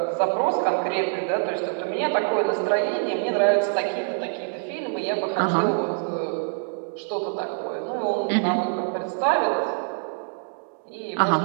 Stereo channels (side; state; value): left; silent; 62 dB below the other